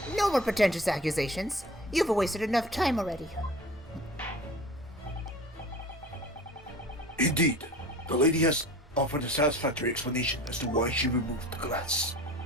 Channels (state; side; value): normal; both; correlation 0.41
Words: No more pretentious accusations. You've wasted enough time already. Indeed. The lady has offered a satisfactory explanation as to why she removed the glass.